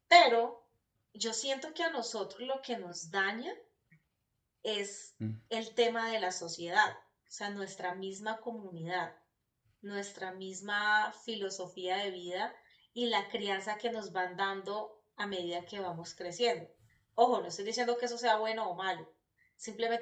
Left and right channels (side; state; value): both; identical; correlation 1.00